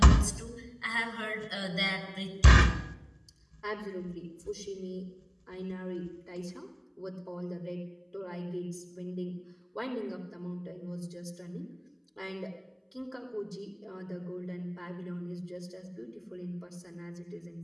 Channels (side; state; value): both; identical; correlation 1.00